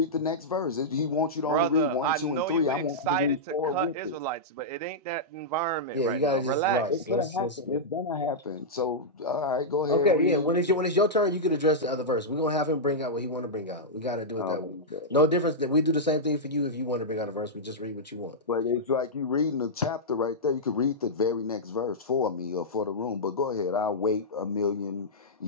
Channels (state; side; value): normal; both; correlation -0.10